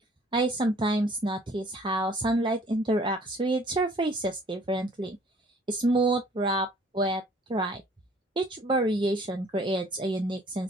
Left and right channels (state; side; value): normal; both; correlation 0.55